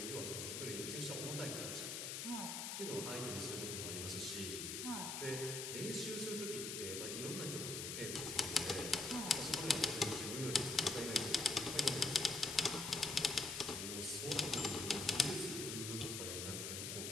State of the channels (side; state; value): left; noise; hiss, 4 dB below the sound